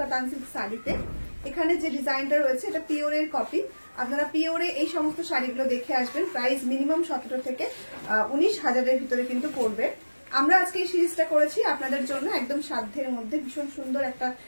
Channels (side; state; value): both; inverted; correlation -1.00